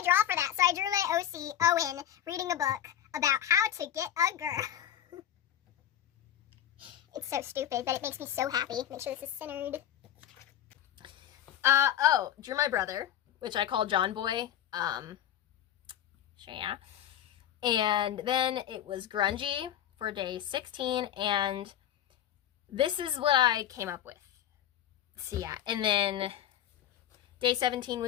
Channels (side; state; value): right; quieter; 10.9 dB